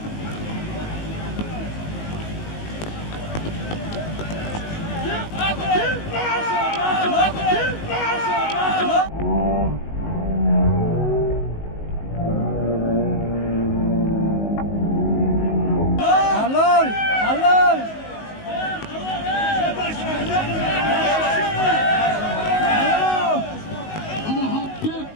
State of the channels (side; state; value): right; late; 19 ms